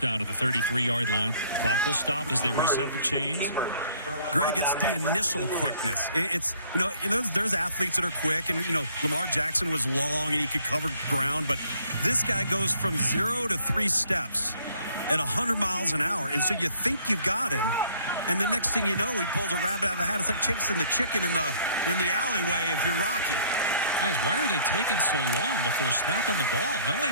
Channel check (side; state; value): both; inverted; correlation -0.60